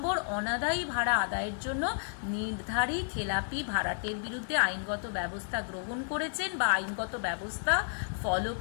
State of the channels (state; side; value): silent; right; 57 dB below the other